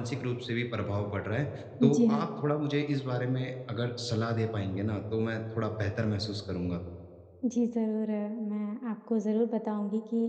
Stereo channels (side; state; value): both; identical; correlation 1.00